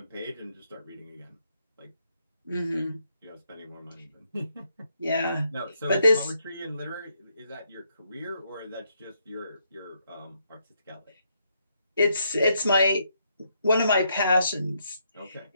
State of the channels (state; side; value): inverted; both; correlation -0.77